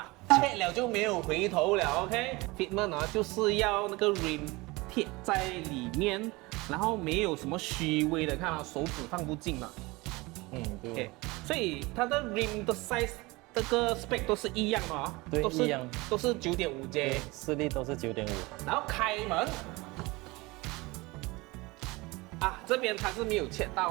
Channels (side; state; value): left; quieter; 23.1 dB